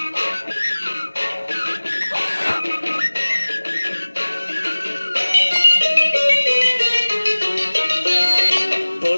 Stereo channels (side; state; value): both; inverted; correlation -1.00